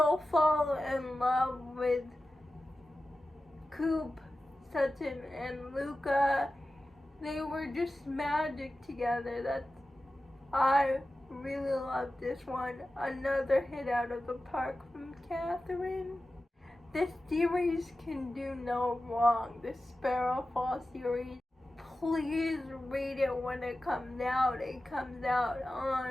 fall in love with Coop, Sutton, and Luca. They were just magic together. I really love this one. Another hit out of the park from Catherine. This series can do no wrong. This Sparrow Fall series. Please read it when it comes out. It comes out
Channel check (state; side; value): normal; both; correlation 0.94